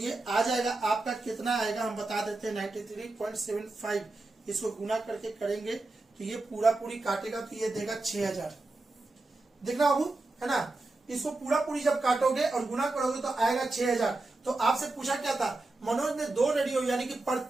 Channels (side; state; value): left; quieter; 3.1 dB